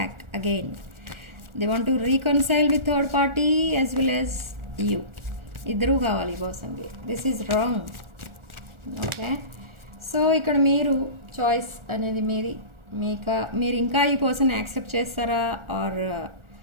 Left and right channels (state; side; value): late; left; 1.4 ms